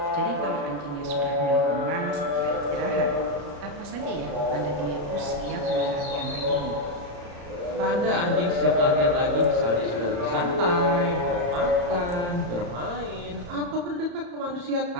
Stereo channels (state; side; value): late; left; 34 ms